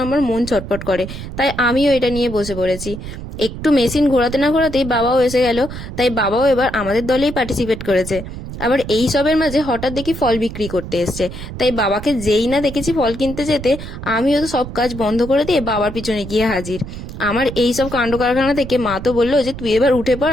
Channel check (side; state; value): right; noise; rumble, 10 dB below the sound